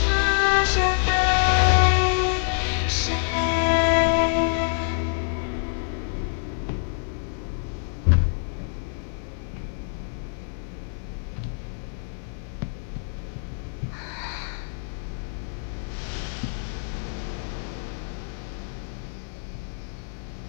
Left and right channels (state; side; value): silent; right; digital silence